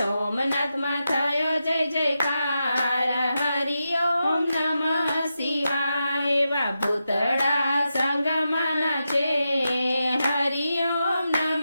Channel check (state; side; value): inverted; both; correlation -0.88